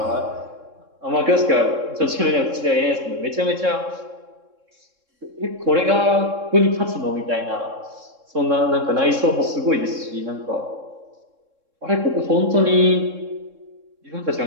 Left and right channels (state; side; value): late; left; 3.7 ms